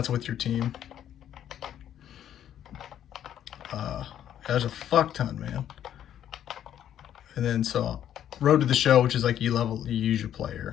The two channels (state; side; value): quieter; right; 10.6 dB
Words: with your team. There's a fuck ton, man. And then so Road to the Show, which is like you use your